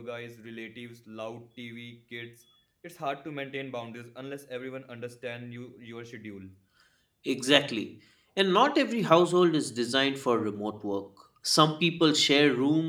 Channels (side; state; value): both; identical; correlation 1.00